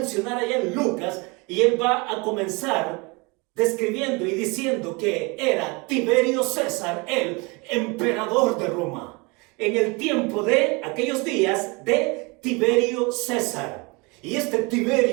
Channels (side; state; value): left; quieter; 27.8 dB